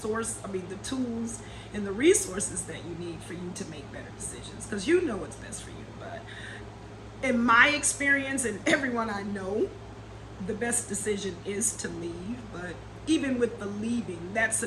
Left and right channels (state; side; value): identical; both; correlation 1.00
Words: tools and the resources that you need for you to make better decisions, because you know what's best for you. But in my experience and everyone I know, the best decision is to leave. But even with the leaving, that's